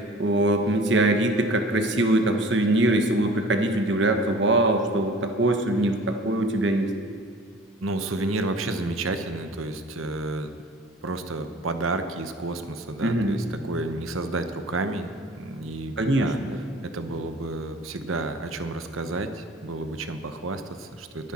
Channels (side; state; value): both; normal; correlation 0.45